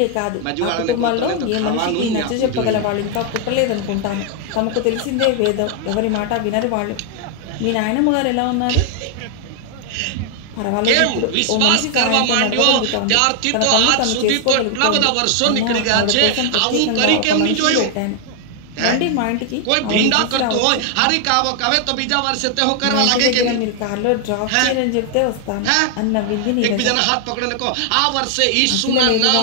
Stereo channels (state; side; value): different; both; correlation 0.00